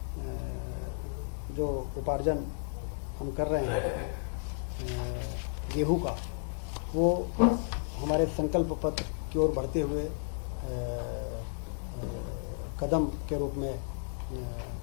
जो उपार्जन हम कर रहे हैं गेहूं का, वो हमारे संकल्प पत्र की ओर बढ़ते हुए कदम के रूप में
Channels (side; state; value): right; silent; digital silence